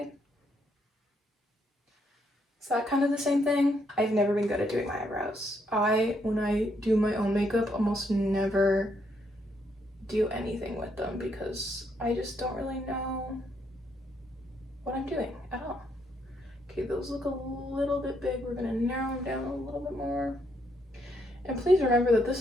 Is that kind of the same thing? I've never been good at doing my eyebrows. When I do my own makeup, almost never do anything with them because I just don't really know what I'm doing at all. Okay, those look a little bit big. We're gonna narrow them down a little bit more. And please remember that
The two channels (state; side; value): normal; both; correlation 0.74